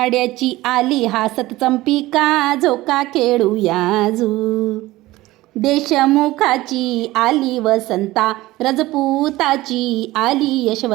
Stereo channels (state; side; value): quieter; left; 18.0 dB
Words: आली हासत चंपिका. झोका खेळूया देशमुखाची आली वसंता, रजपुताची आली